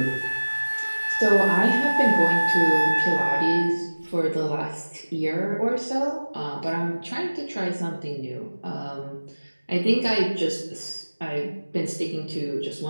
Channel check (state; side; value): inverted; both; correlation -1.00